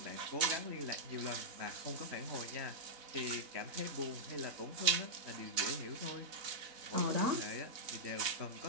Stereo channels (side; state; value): left; late; 4.0 ms